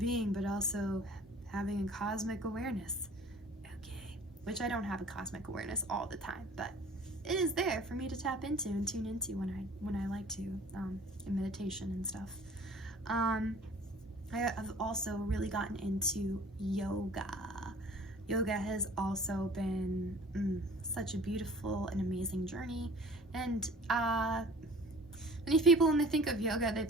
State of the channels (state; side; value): normal; both; correlation 0.47